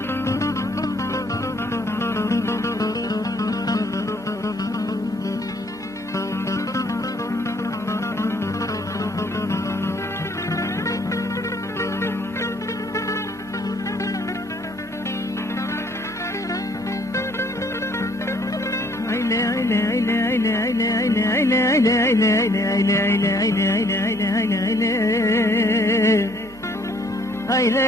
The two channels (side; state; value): right; noise; hum, 23 dB below the sound